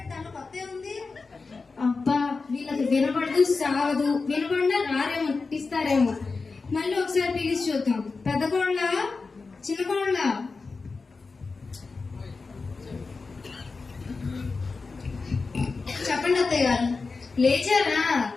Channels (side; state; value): right; quieter; 4.2 dB